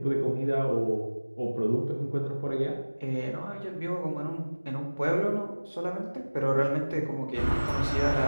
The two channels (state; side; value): inverted; both; correlation -1.00